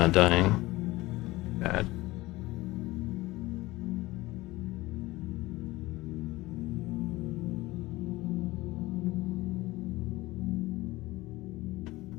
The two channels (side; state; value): right; quieter; 19.5 dB